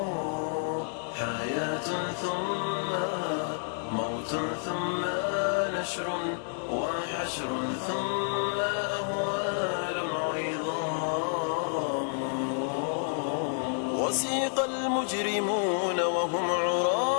حياة ثم موت ثم نشر وحشر ثم أهوال عظام. وسيق المجرمون وهم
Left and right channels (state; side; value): silent; right; 55 dB below the other